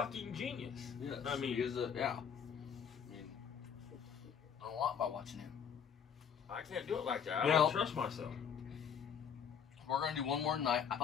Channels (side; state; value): right; quieter; 7.5 dB